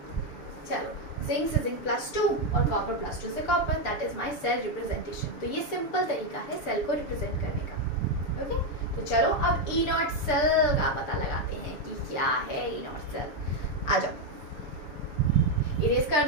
चलो, जिंक से जिंक +2 और कॉपर +2 से copper, that is my cell representation. तो ये सिंपल तरीका है सेल को रिप्रेजेंट करने का, ओके। तो चलो अब ई नॉट सेल का पता लगाते हैं कि क्या है ई नॉट सेल। आ जाओ, इरेज कर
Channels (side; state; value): right; late; 6.8 ms